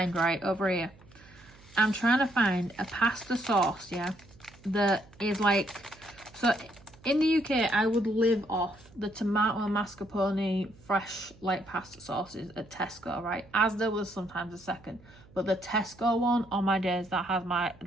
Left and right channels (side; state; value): right; noise; hum, 24 dB below the sound